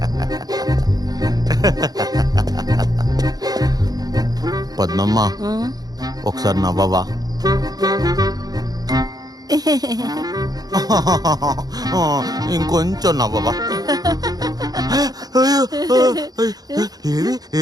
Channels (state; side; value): late; left; 0.19 ms